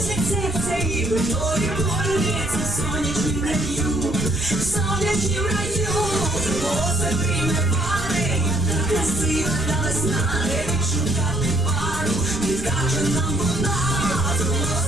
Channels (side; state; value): right; noise; rumble, 13 dB below the sound